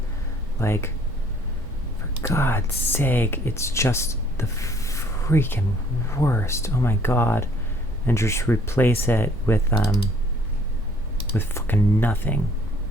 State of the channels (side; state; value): both; normal; correlation 0.60